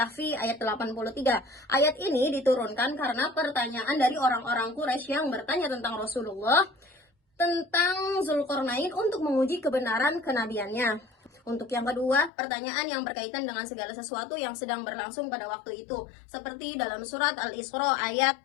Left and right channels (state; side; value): drops out; right; at 12.3 s